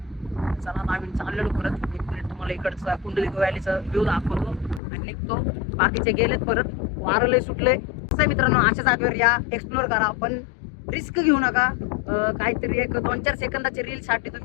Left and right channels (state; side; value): drops out; right; at 4.8 s